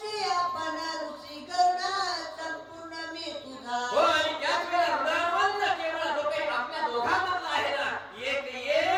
आपण ऋषी करुणा संपूर्ण मी तुझा हो आणि त्याच वेळेला हृदयवंत केवळ जो काही आपल्या दोघांमधला आहे ना एक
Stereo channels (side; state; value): both; identical; correlation 1.00